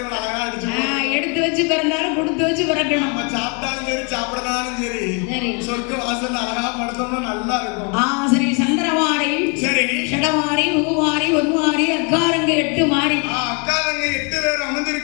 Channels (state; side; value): quieter; right; 34.3 dB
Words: அழகா அடிச்சு எடுத்து வச்சு பிறந்தாலும் கொடுத்து வச்சு பிறக்கணும். நம்ம சாப்பிட்டாலும் சரி சாப்பிடனாலும் சரி சொர்க்க வாசல் அழகா படுத்தோம்னா நல்லா இருக்கும். சரி, சந்திரவாரி, சரி ஷடவாரி, பூவாரி, ஒன்வாரி, அக்காரங்க 8 மாறி. அக்காரங்க 8 பேர்